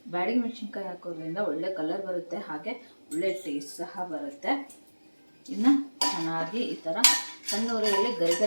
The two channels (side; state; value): both; inverted; correlation -1.00